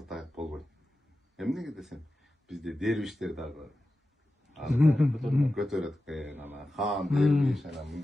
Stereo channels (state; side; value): normal; both; correlation 0.93